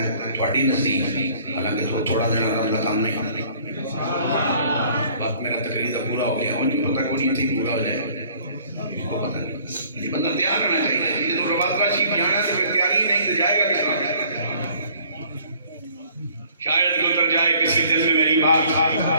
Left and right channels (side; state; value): both; inverted; correlation -0.56